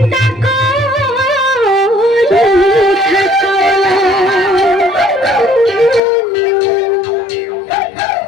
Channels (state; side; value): drops out; right; at 6.0 s